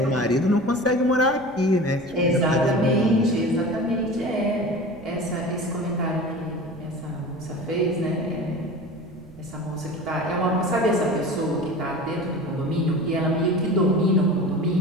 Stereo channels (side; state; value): right; noise; rumble, 22 dB below the sound